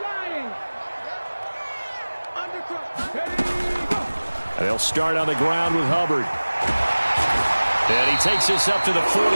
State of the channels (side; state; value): both; inverted; correlation -1.00